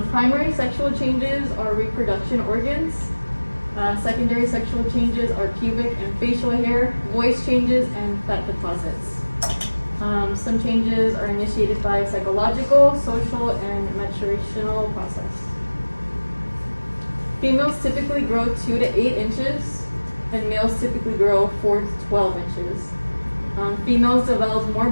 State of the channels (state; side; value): inverted; both; correlation -1.00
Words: Primary sexual changes are reproduction organs. Secondary sexual changes are pubic and facial hair, voice changes, and fat deposits. Some changes are initiated by psychological, social, and maturational process. Females typically grow 2 to 8 inches, and males typically grow 4 to 12 inches. Females develop more